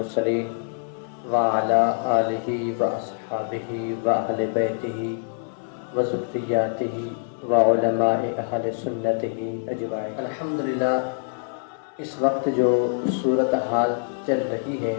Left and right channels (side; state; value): right; silent; digital silence